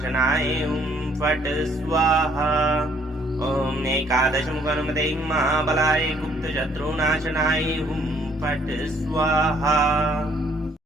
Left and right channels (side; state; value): both; normal; correlation 0.64